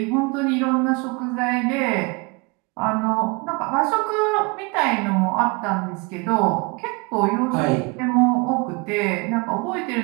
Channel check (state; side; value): quieter; left; 28.3 dB